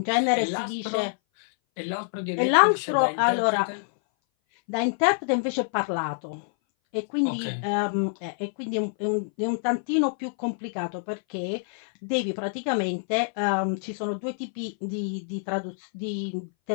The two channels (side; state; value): right; silent; 59 dB below the other